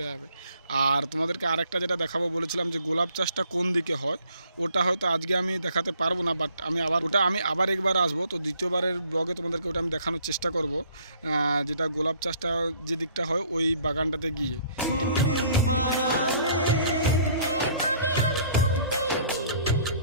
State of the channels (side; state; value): both; inverted; correlation -0.59